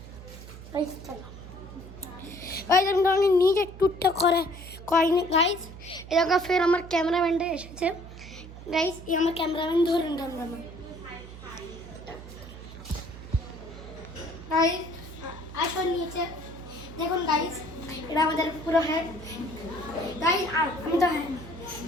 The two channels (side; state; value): right; noise; hum, 15 dB below the sound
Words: চলো আমি নিজে ট্যুরটা করিনি গাইস। এরকম ফের আমার ক্যামেরাম্যানটা এসেছে গাইস। এই আমার ক্যামেরাম্যান ধরুন ক্যামেরাম্যান গাইস আসো নিচে দেখুন গাইস। এটা আমাদের পুরো হেড গাইস। আমি তো হ্যাঁ